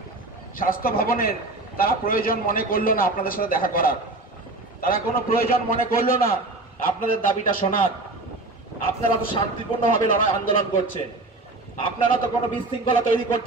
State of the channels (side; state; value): left; quieter; 3.0 dB